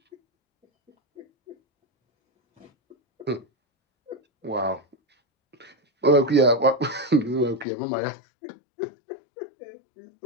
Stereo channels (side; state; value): right; drops out; at 7.7 s